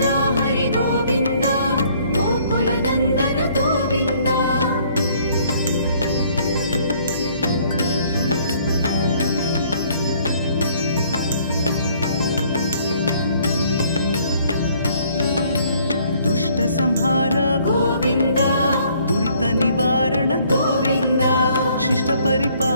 हरि गोविन्द गोकुलनन्दन गोविन्द दुष्ट संहार गोविन्द दुरित निवारण गोविन्द शिष्ट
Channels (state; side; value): inverted; both; correlation -0.62